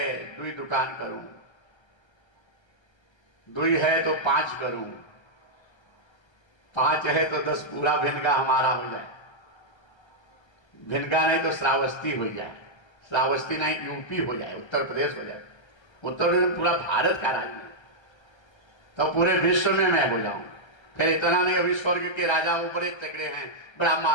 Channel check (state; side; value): late; right; 1.3 ms